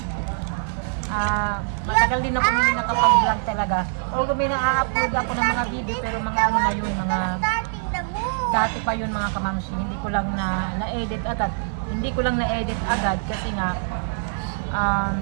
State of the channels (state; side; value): silent; left; digital silence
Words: Matagal din ako hindi nakapag-vlog talaga. Although may na-upload ako ng mga video, pero mga na yun, mga dati pa yun mga kamamsi. Hindi ko lang na-edit agad. Kasi nga